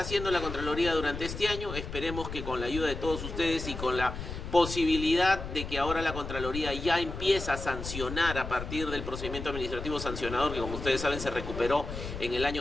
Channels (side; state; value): left; noise; rumble, 8 dB below the sound